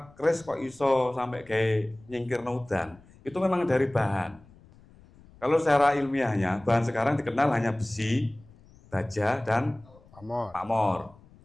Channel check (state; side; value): noise; left; rumble, 25 dB below the sound